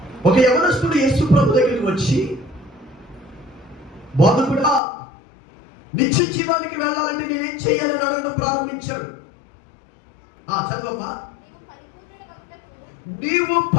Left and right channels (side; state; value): right; drops out; at 4.8 s